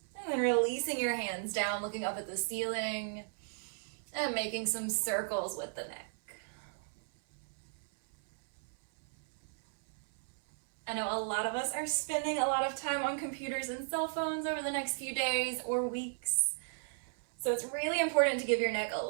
And then releasing your hands down, looking up at the ceiling, and making some circles with the neck. I know a lot of us are spending a lot of time on computers and cell phones over the next few days or weeks. So it's really important to give your neck a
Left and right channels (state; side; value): silent; left; 54 dB below the other